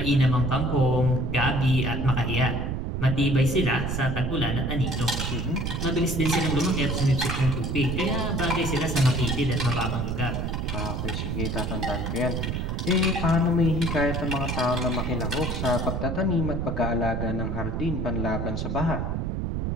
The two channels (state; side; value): noise; right; rumble, 1 dB below the sound